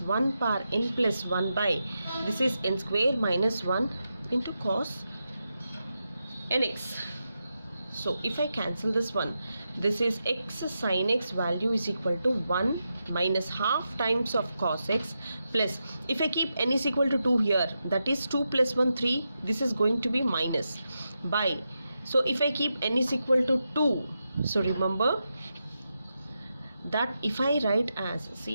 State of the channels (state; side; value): inverted; both; correlation -0.88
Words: power n plus 1 by, this is n square minus 1 into cos nx. So if I cancel this one, this is x sin x value is equal to 1 minus half times of cos x plus, if I keep n is equal to 2 here, that is 2 plus 1 3, this is going to be minus by, so if I keep n is equal to 2, so remember that if I write as,